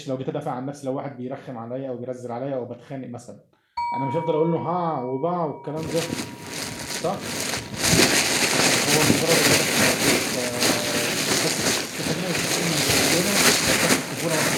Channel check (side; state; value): both; identical; correlation 1.00